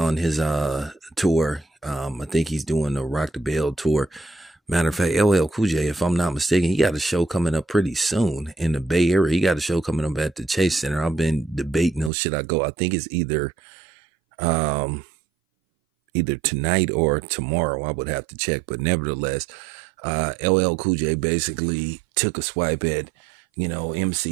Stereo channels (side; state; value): left; drops out; at 12.1 s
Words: his tour. I think he's doing the Rock the Bell tour. Matter of fact, LL Cool J, if I'm not mistaken, he got a show coming up pretty soon in the Bay Area. He got a show coming up at the Chase Center. I've been debating, should I go? I think it's either tonight or tomorrow. I would have to check, but nevertheless, LL Cool J basically took a swipe at,